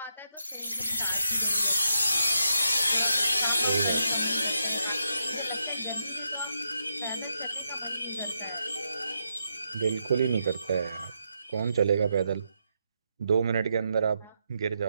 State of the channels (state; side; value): inverted; both; correlation -0.81